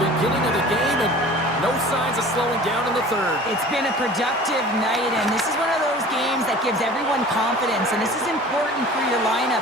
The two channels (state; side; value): normal; both; correlation 0.43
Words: of the game, and no signs of slowing down in the 3rd. It's been a productive night, and this is one of those games that gives everyone confidence, and this is important for your